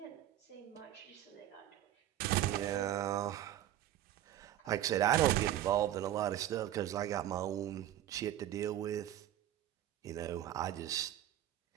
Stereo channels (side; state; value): left; quieter; 12.5 dB